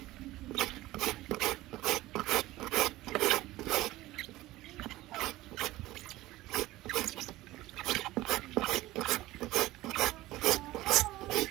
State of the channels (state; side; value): quieter; left; 17.4 dB